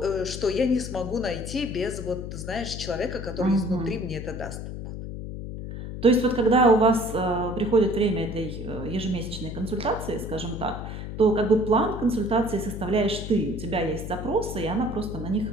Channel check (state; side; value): noise; left; hum, 8 dB below the sound